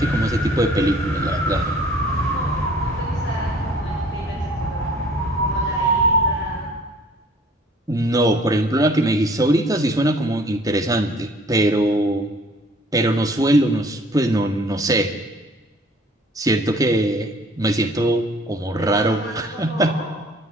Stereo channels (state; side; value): normal; both; correlation 0.53